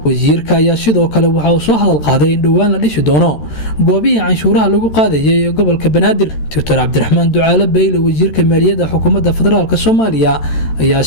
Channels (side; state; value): right; late; 13 ms